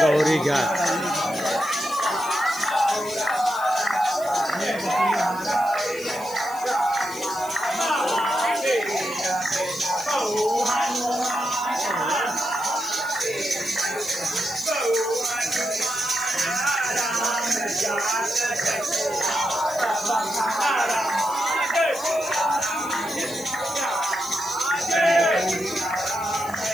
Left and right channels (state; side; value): noise; left; hiss, 17 dB below the sound